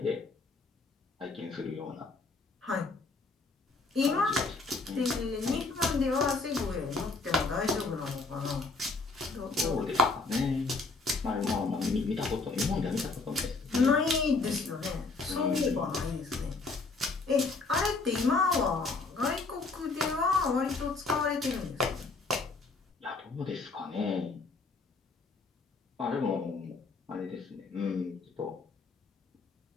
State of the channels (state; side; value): quieter; right; 3.9 dB